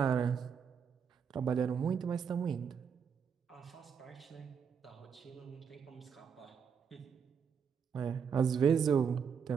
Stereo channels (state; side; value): quieter; left; 6.8 dB